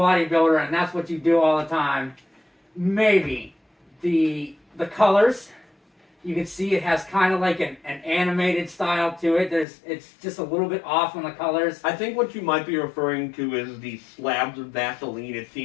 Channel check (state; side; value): drops out; right; at 9.7 s